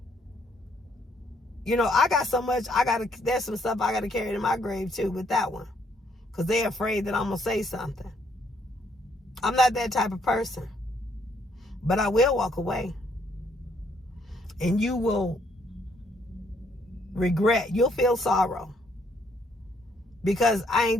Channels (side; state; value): both; normal; correlation 0.69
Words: I got so much, there's some stuff I got to carry to my grave too with that one. Because they're afraid that I'm going to say something. I'm not that type of person. But I will walk away. And you will regret. You'll feel sorrow. Because I